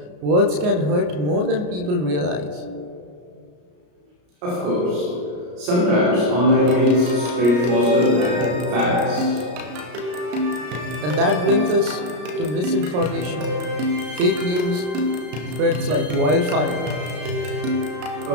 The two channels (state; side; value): late; left; 33 ms